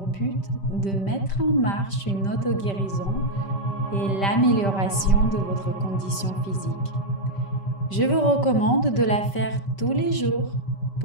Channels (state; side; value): late; right; 5.1 ms